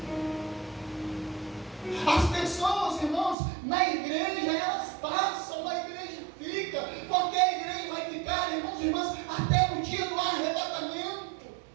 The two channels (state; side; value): drops out; left; at 3.4 s